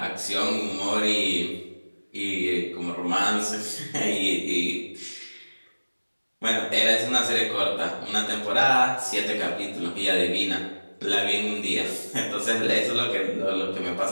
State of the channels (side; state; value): both; inverted; correlation -1.00